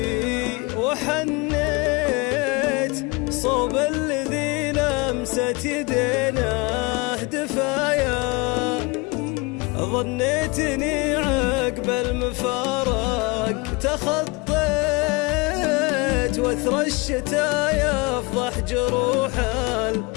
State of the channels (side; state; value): right; quieter; 26.8 dB